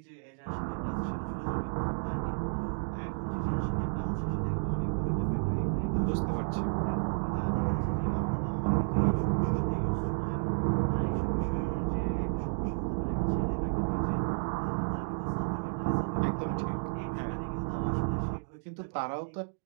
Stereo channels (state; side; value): silent; left; digital silence